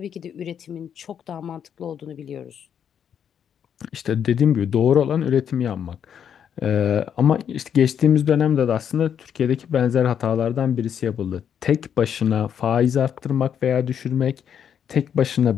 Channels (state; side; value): quieter; right; 8.4 dB